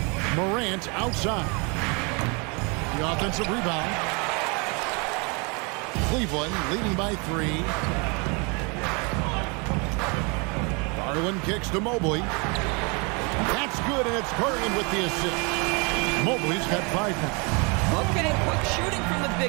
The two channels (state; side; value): quieter; left; 31.5 dB